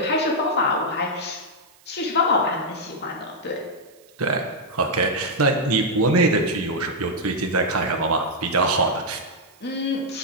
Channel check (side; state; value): right; noise; hiss, 29 dB below the sound